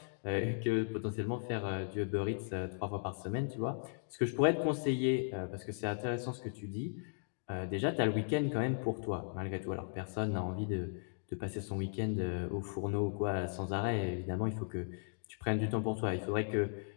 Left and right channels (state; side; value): silent; right; digital silence